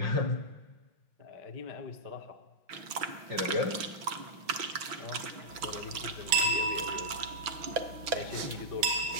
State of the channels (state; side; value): late; left; 6.0 ms